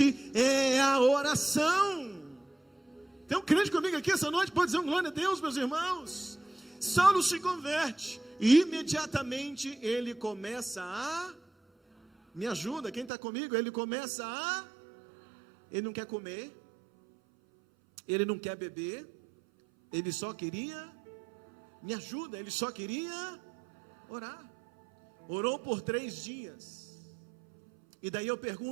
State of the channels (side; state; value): left; drops out; at 13.1 s